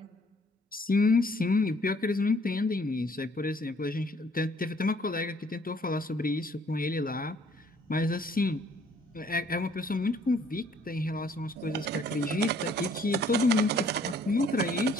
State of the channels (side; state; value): both; normal; correlation 0.61